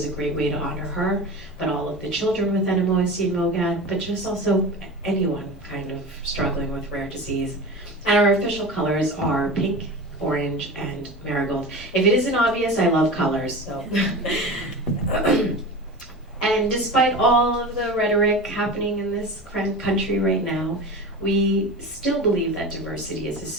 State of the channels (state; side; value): normal; both; correlation 0.30